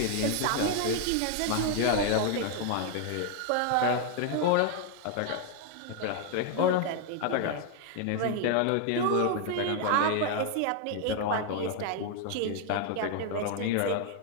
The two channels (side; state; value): both; different; correlation 0.00